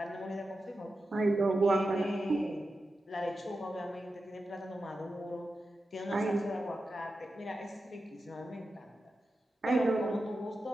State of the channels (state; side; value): normal; both; correlation 0.91